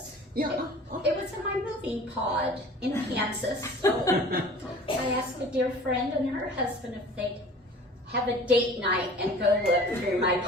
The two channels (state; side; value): normal; both; correlation 0.44